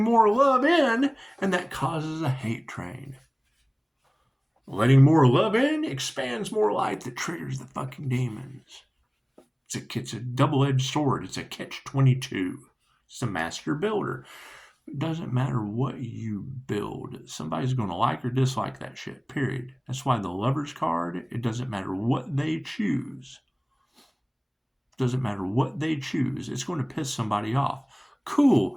more love in, and that causes a hate train. Letting more love in expands more light that triggers the fucking demons. It's a double-edged sword. It's a catch-22. It's a master builder. It doesn't matter what you build. Somebody's going to like or dislike that shit, period. That's why the Lover's card, it doesn't matter what they choose. It doesn't matter what they choose. It's going to piss somebody off. Cool.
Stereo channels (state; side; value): identical; both; correlation 1.00